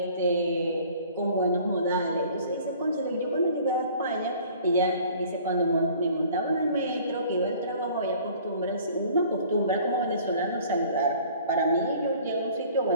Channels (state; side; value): inverted; both; correlation -0.51